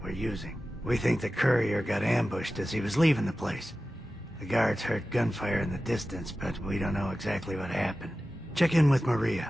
we're using. We think the courier got ambushed as he was leaving the place. The guards heard gunfire in the distance, but we don't know exactly what happened. Check in with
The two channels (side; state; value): both; normal; correlation 0.95